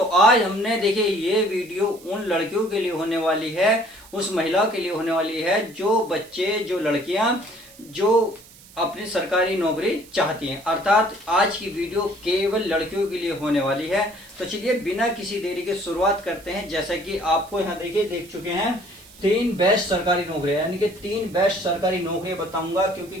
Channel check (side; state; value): right; noise; hiss, 23 dB below the sound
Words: आज हमने देखिए ये वीडियो उन लड़कियों के लिए होने वाली है, उस महिलाओं के लिए होने वाली है जो बच्चे जो लड़कियां जो अपनी सरकारी नौकरी चाहती हैं। अर्थात आज की वीडियो केवल लड़कियों के लिए होने वाली है। तो चलिए बिना किसी देरी के शुरुआत करते हैं। जैसा कि आपको यहाँ देखिए देख चुके हैं 3 बेस्ट सरकारी नौकरियां, यानी कि 3 बेस्ट सरकारी नौकरियां बताऊंगा।